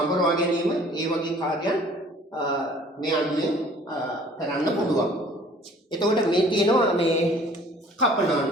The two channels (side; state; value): both; normal; correlation 0.53